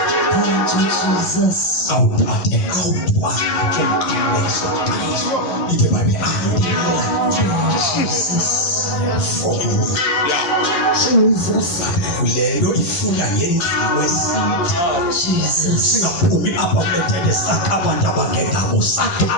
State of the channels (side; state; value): right; late; 11 ms